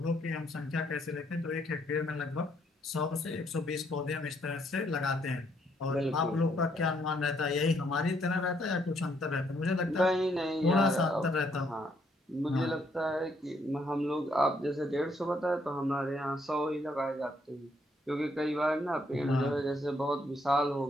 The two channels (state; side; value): normal; both; correlation 0.71